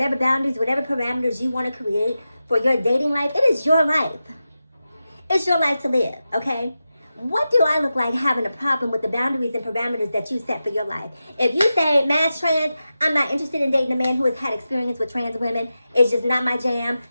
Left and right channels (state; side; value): inverted; both; correlation -0.92